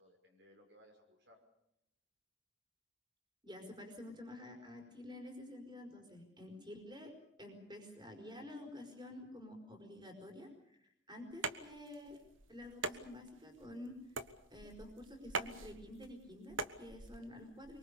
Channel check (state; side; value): normal; both; correlation 0.11